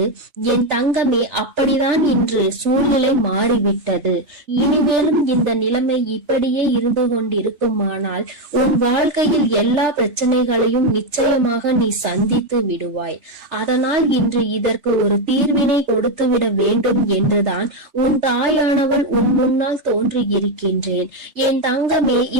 என் தங்கமே, அப்படிதான் இன்று சூழ்நிலை மாறிவிட்டது. இனிமேலும் இந்த நிலைமை இப்படியே இருந்து கொண்டிருக்குமானால் உன் வாழ்க்கையில் எல்லா பிரச்சனைகளையும் நிச்சயமாக நீ சந்தித்து விடுவாய். அதனால் இன்று இதற்கு ஒரு தீர்வினை கொடுத்து விட வேண்டும் என்றுதான் உன் தாயானவள் உன் முன்னால் தோன்றி இருக்கின்றேன். என் தங்கமே,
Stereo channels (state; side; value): late; left; 3.4 ms